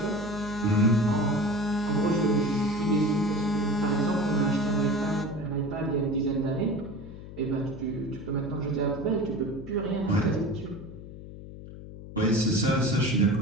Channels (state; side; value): noise; left; hum, 14 dB below the sound